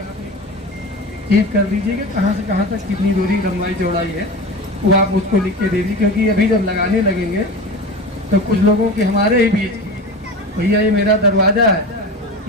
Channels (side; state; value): both; normal; correlation 0.29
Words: चीज कर दीजिए कि कहाँ से कहाँ तक कितनी दूरी लंबाई चौड़ाई है, वो आप उसको लिख के दे दीजिए। क्योंकि अभी जब लगाने लगेंगे तो कुछ लोगों के हमारे ही बीच, भैया ये मेरा दरवाजा है,